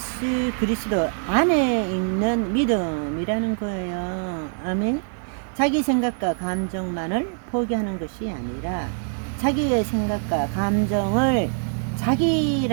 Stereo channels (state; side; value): silent; left; 62 dB below the other